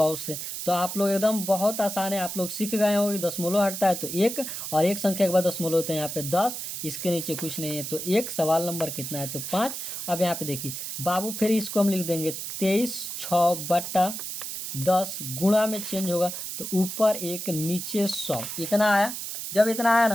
से। तो आप लोग एकदम बहुत आसान है, आप लोग सीख गए हो कि दशमलव हटता है तो 1, और 1 संख्या के बाद दशमलव होता है यहाँ पे 10, इसके नीचे कुछ नहीं है तो 1। सवाल नंबर कितना है, तो 5। अब यहाँ पे देखिए बाबू फिर इसको हम लिख देंगे 23 बटा 10, गुणा में चेंज होगा तो ऊपर 1 नीचे 100, इतना आया। जब इतना आया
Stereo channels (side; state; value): right; noise; hiss, 6 dB below the sound